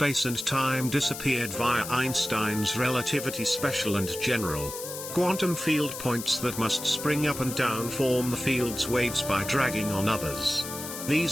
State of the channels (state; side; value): noise; left; hiss, 9 dB below the sound